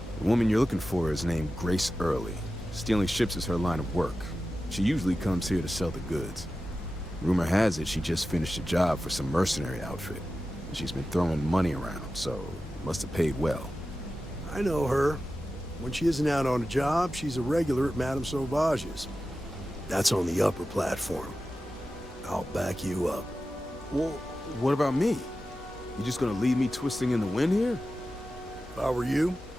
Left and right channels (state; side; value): normal; both; correlation 0.93